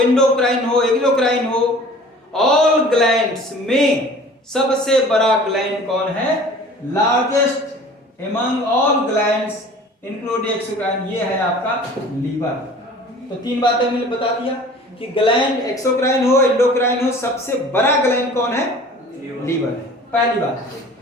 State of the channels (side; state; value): both; normal; correlation 0.46